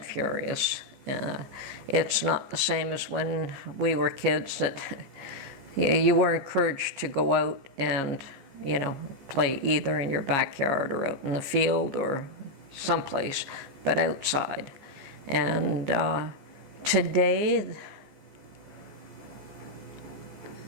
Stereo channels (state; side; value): late; left; 15 ms